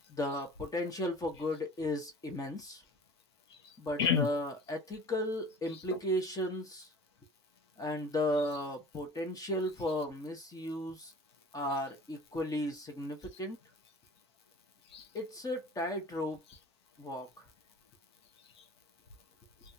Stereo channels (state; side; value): normal; both; correlation 0.42